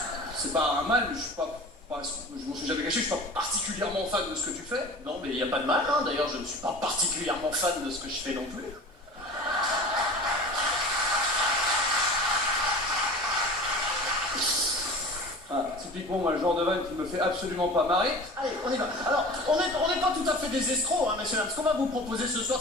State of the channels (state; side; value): normal; both; correlation 0.38